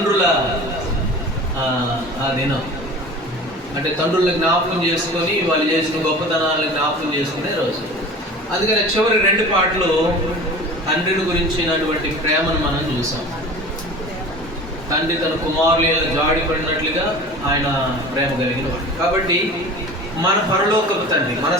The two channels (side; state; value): both; normal; correlation 0.38